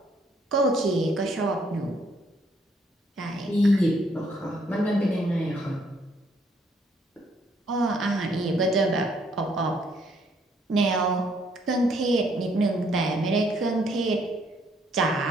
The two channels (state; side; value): normal; both; correlation 0.68